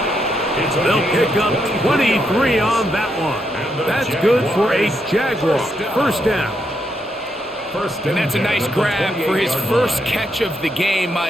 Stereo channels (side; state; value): both; normal; correlation 0.79